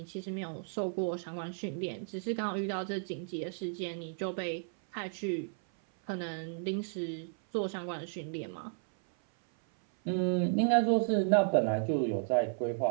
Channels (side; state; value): left; silent; 56 dB below the other